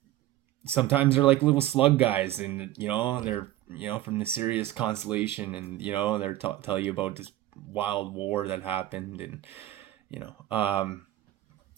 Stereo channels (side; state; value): left; quieter; 14.7 dB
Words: sometimes they're like little slug guys, and they're from the Sirius constellation, and they're tell you about this wild war that happened, and